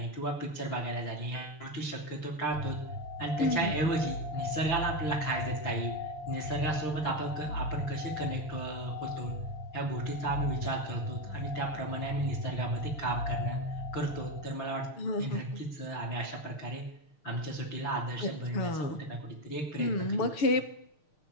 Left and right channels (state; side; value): late; right; 6.6 ms